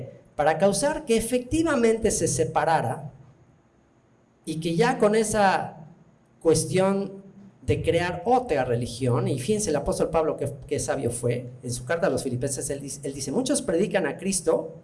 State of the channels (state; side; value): identical; both; correlation 1.00